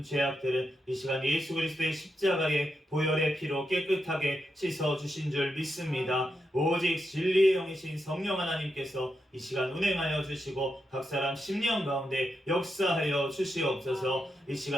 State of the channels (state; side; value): normal; both; correlation 0.85